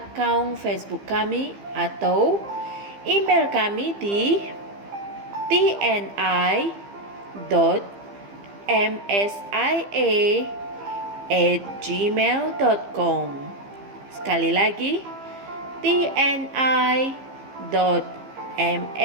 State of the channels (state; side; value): late; left; 15 ms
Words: Facebook kami atau email kami di tni.msia@gmail.com. Sekali lagi,